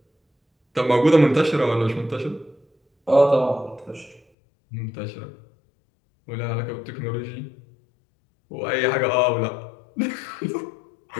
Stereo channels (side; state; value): right; drops out; at 4.2 s